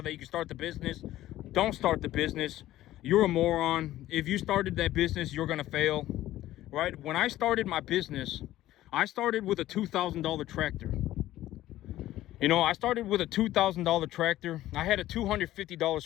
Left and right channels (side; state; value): right; quieter; 14.6 dB